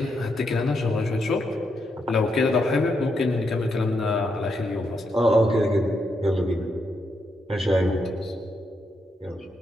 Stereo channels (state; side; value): normal; both; correlation 0.81